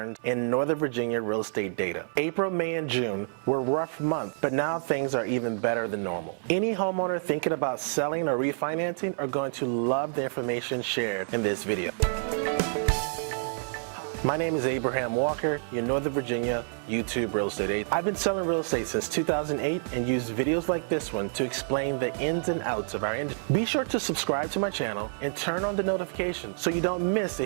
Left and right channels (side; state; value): left; silent; 56 dB below the other